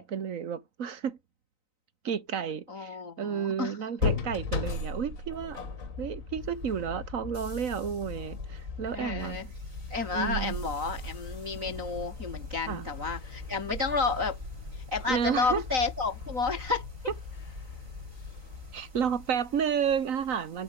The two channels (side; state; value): left; late; 3.9 ms